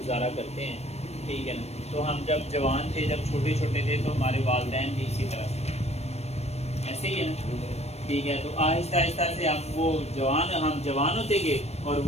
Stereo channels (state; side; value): late; right; 0.31 ms